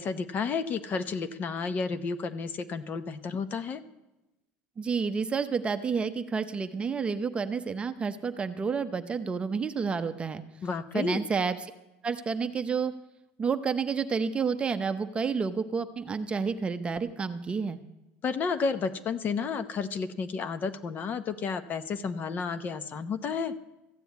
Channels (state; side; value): normal; both; correlation 0.68